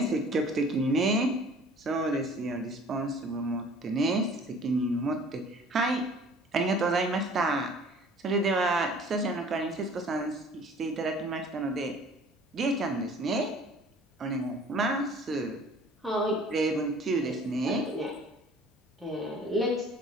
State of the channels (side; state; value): both; normal; correlation 0.50